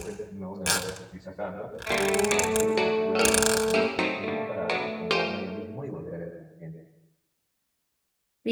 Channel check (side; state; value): both; identical; correlation 1.00